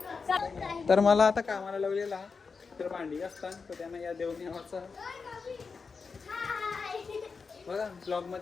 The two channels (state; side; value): quieter; right; 5.0 dB